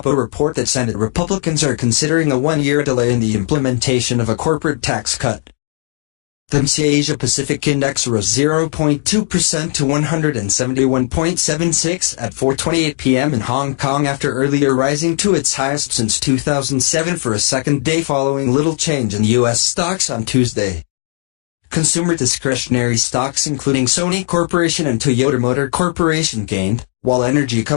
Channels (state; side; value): silent; right; 63 dB below the other